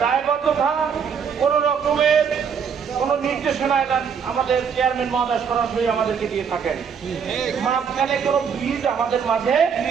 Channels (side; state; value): left; quieter; 6.8 dB